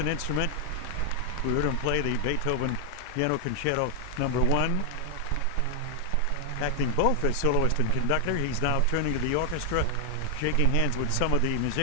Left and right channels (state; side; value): different; both; correlation 0.00